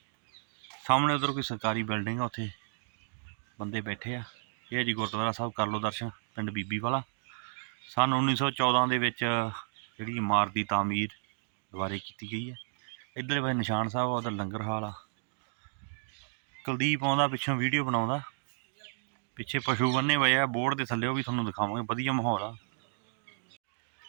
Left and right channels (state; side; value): silent; left; digital silence